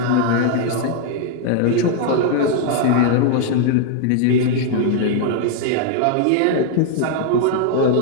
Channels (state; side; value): different; both; correlation 0.00